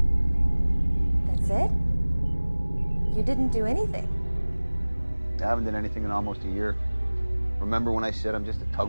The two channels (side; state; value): both; inverted; correlation -1.00